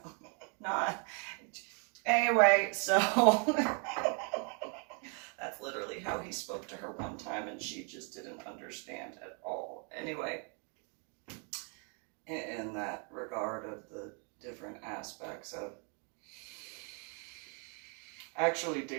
not anyway, so that's literally how he spoke to her one time, and she just didn't understand at all. Anyway, in that regard of the different aspects of, actually,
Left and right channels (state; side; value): quieter; left; 38.3 dB